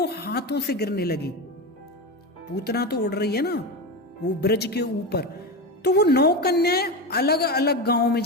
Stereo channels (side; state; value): both; normal; correlation 0.19